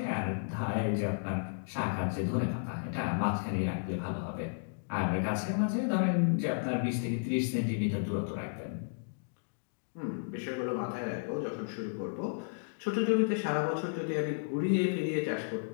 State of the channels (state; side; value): silent; right; digital silence